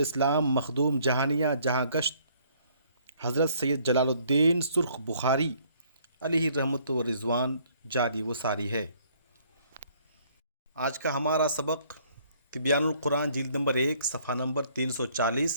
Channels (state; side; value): inverted; both; correlation -0.62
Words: مخدوم جہانیہ جہاں گشت حضرت سید جلال الدین سرخ بخاری علیہ رحمت و رضوان جاری و ساری ہے۔ آج کا ہمارا سبق تبیان القرآن جلد نمبر 1 صفحہ نمبر